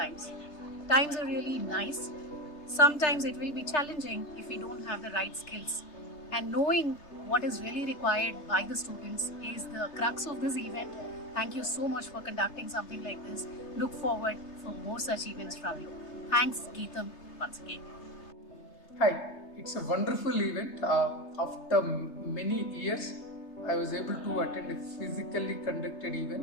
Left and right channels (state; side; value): late; right; 3.3 ms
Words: Times are really nice. Sometimes it will be challenging if we don't have the right skills. And knowing what is really required by the students is the crux of this event. Thank you so much for conducting something like this. Look forward for more such events from you. Thanks, Geetam, once again. Hi, it's a wonderful event. After many years, I was able to attend a physically conducted